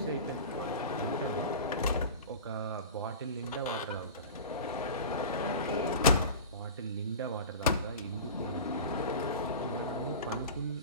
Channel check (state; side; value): inverted; both; correlation -0.34